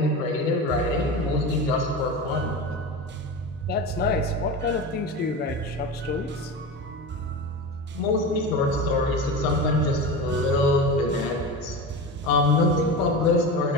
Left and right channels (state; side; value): normal; both; correlation 0.26